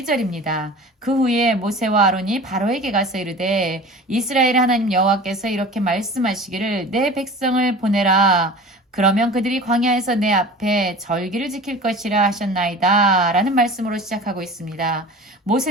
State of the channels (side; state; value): both; normal; correlation 0.39